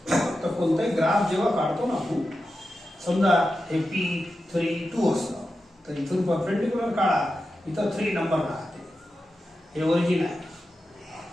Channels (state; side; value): normal; both; correlation 0.91